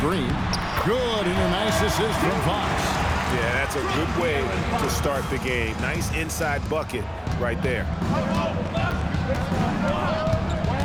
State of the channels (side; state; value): both; identical; correlation 1.00